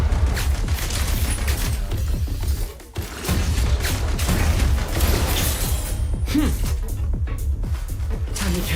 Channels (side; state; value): both; identical; correlation 1.00